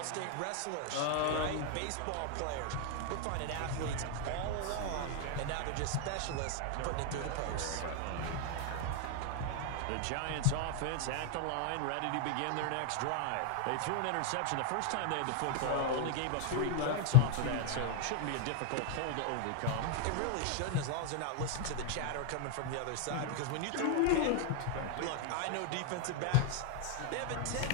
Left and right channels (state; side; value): different; both; correlation 0.00